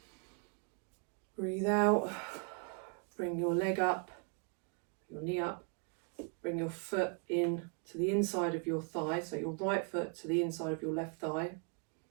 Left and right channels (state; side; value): quieter; left; 39.4 dB